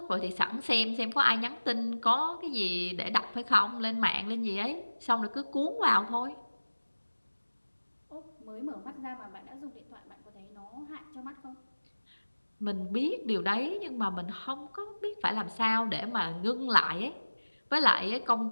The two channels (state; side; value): inverted; both; correlation -1.00